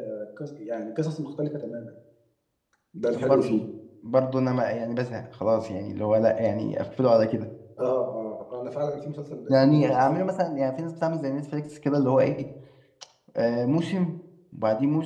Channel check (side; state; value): both; identical; correlation 1.00